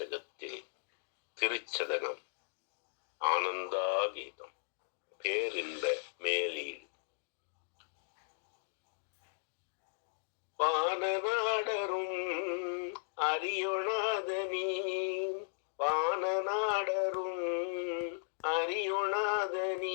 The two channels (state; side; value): silent; right; digital silence